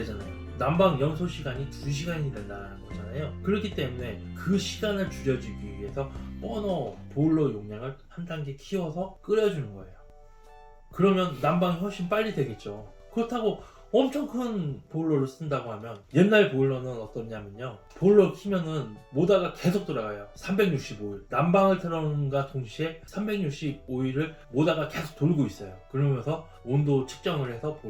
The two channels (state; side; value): identical; both; correlation 1.00